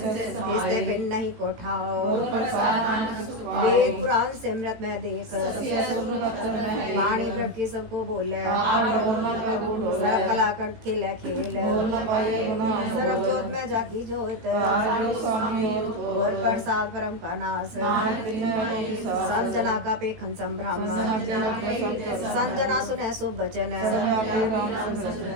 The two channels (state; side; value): late; left; 18 ms